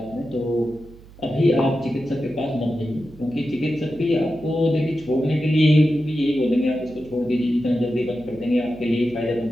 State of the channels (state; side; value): noise; right; hum, 21 dB below the sound